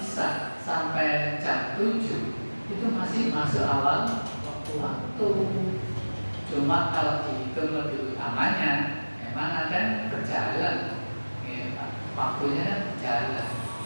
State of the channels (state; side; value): inverted; both; correlation -1.00